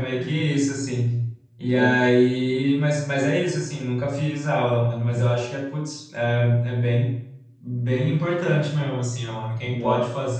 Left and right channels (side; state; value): both; identical; correlation 1.00